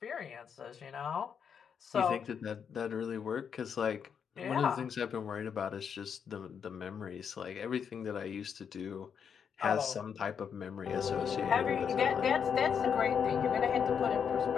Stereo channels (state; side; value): quieter; right; 7.2 dB